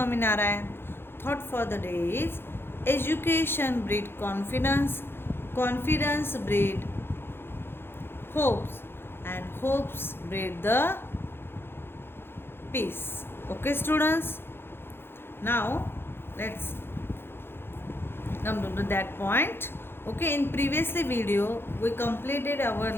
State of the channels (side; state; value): right; late; 0.11 ms